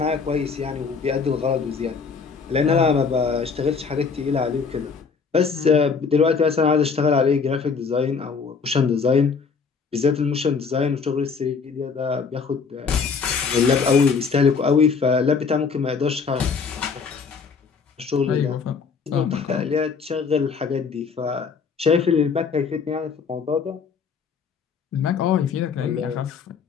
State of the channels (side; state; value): right; quieter; 5.4 dB